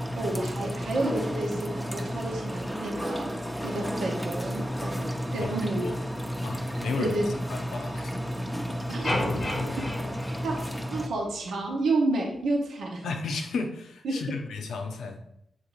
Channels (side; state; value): both; normal; correlation 0.87